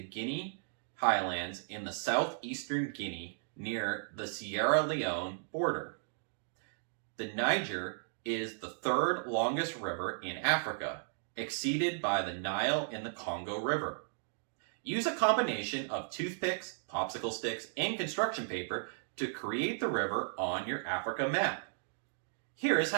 Guinea Highlands in the southeastern Guinea near the Sierra Leone border. The Niger is the third longest river in Africa, exceeded by the Nile and the Congo River. Use a combination of toothpicks, popsicle sticks, and construction paper to create the river on your Africa map. Here is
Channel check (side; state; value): left; silent; digital silence